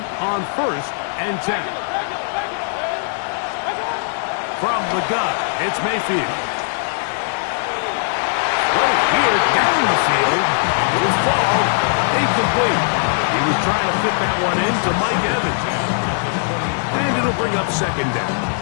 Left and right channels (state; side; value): silent; right; 66 dB below the other